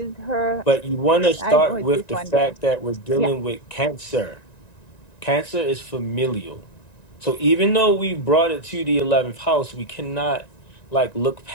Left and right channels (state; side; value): late; right; 1.9 ms